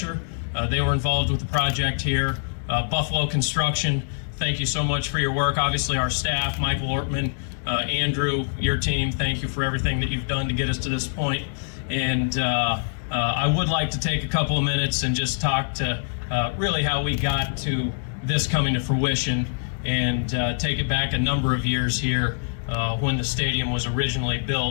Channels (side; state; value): right; silent; digital silence